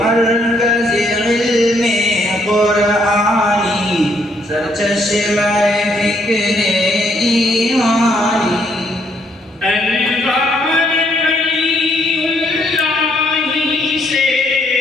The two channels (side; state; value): both; normal; correlation 0.70